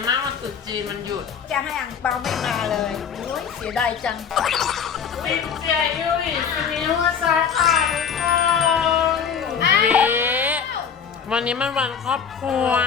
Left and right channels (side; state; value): right; quieter; 7.0 dB